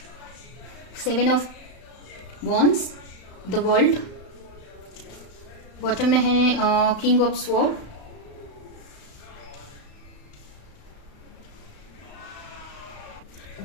7 of wands, the world. Bottom में है किंग ऑफ स्वॉर्ड,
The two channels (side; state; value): right; late; 35 ms